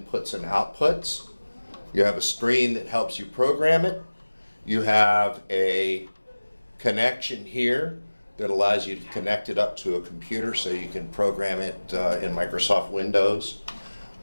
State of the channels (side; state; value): both; inverted; correlation -1.00